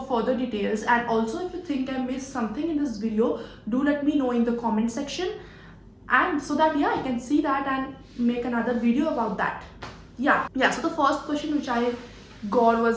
further details. And also, if you think I missed something in this video, do let me know in the comment section, and so that I can see that and make another video about that. Yeah, so the first question which I got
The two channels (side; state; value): both; identical; correlation 1.00